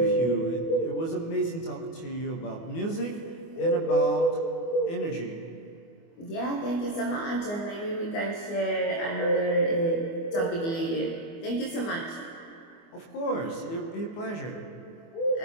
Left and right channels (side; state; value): right; late; 24 ms